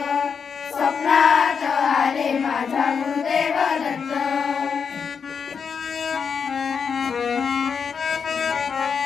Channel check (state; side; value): quieter; right; 6.2 dB